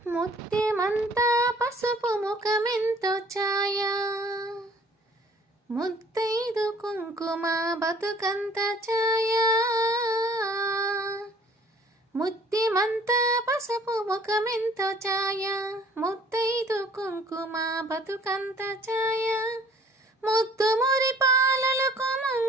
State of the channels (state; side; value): normal; both; correlation 0.55